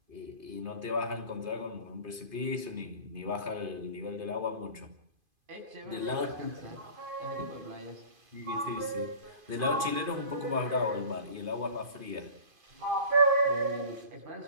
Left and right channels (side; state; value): left; late; 2.5 ms